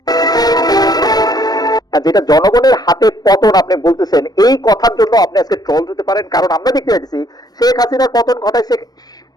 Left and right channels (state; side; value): late; right; 0.19 ms